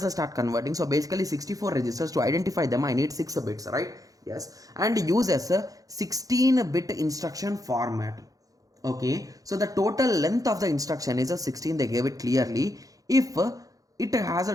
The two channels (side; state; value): left; late; 0.17 ms